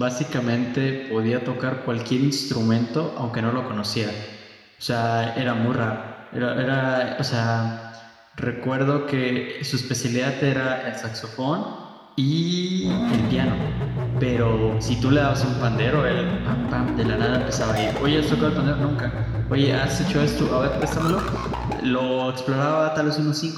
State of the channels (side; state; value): both; identical; correlation 1.00